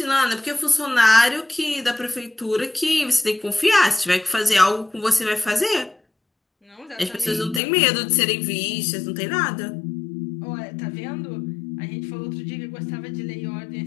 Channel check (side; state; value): right; drops out; at 7.6 s